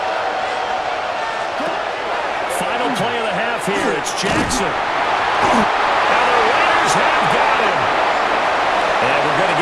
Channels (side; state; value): both; identical; correlation 1.00